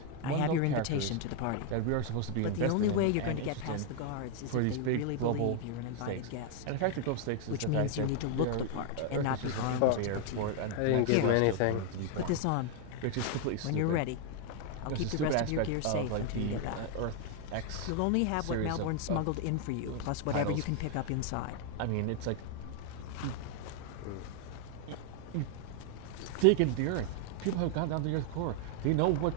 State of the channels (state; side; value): different; both; correlation 0.00